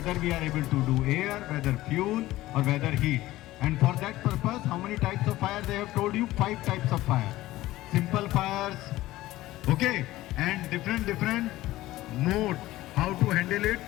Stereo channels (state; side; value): quieter; right; 16.6 dB